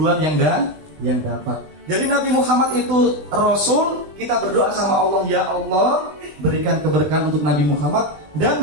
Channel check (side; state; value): left; late; 20 ms